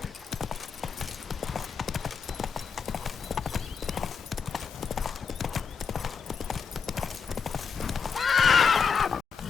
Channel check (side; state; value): right; quieter; 6.1 dB